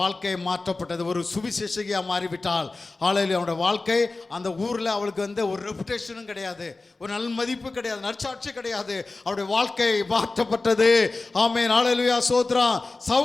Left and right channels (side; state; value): right; quieter; 3.4 dB